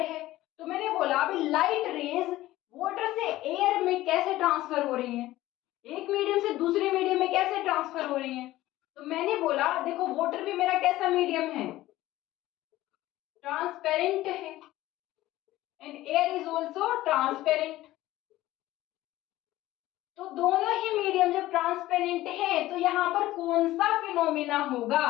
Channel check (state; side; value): quieter; right; 16.2 dB